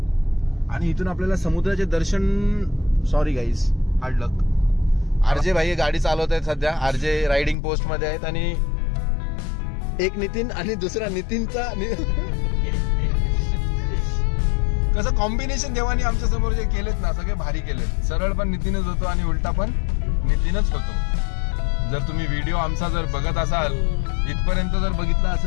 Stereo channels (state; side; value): drops out; right; at 7.6 s